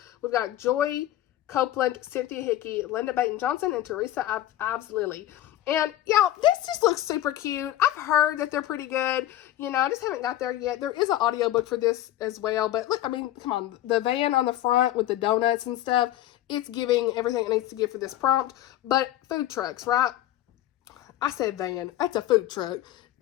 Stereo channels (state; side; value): quieter; right; 13.4 dB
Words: We've got Joy Copeland, Cynthia Hickey, Linda Baton Johnson, and Teresa Ives Lilly. And, y'all, this just looks super cute. I've heard that they're pretty good. You know, I just haven't got there yet. There is an audiobook for this as well. But, look, I mean, come on. The van on the front with the donuts and stuff, it's giving everything it needs to give for this prompt. But food trucks, right? I said van. That's a food truck.